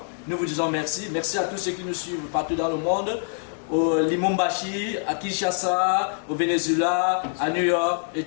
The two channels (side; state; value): right; silent; 62 dB below the other